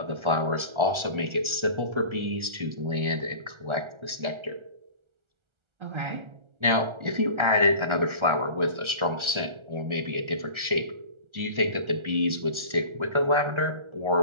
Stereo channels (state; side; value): late; left; 1.3 ms